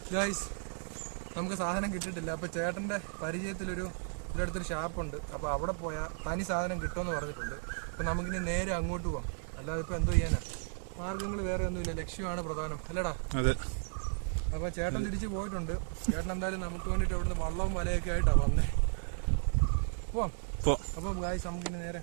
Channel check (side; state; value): left; silent; 55 dB below the other